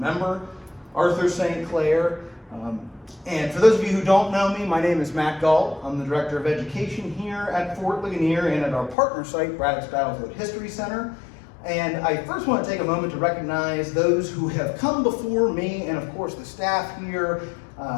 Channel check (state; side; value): drops out; right; at 9.0 s